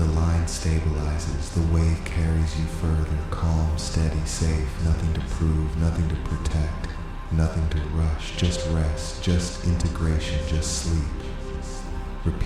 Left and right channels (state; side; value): identical; both; correlation 1.00